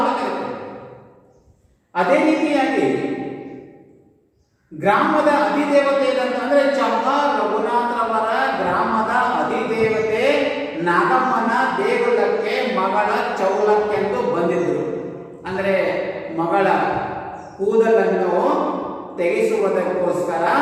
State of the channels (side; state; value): both; identical; correlation 1.00